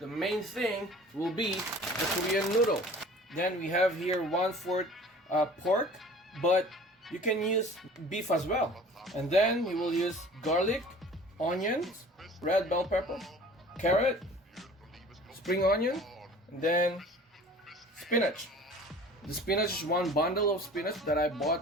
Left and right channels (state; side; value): normal; both; correlation 0.45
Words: main thing will be the Korean noodle. Then we have here 1/4 pork, but you can use beef as well. And then we will use garlic, onions, red bell pepper, carrot, spring onion, and then spinach. The spinach is one bundle of spinach that I